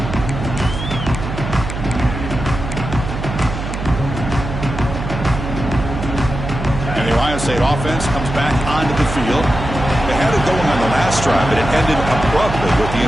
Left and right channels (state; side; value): noise; right; hum, 6 dB below the sound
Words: And the Ohio State offense comes back onto the field. They had it going on the last drive, but it ended abruptly with the